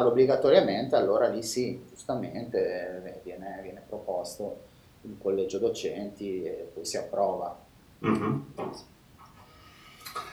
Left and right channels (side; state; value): both; identical; correlation 1.00